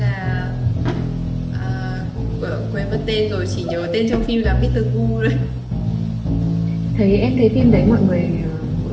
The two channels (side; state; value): both; identical; correlation 1.00